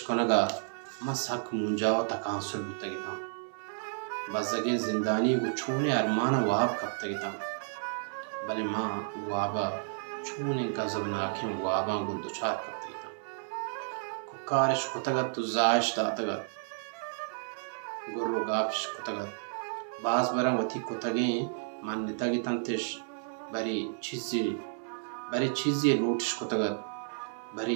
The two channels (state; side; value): silent; left; digital silence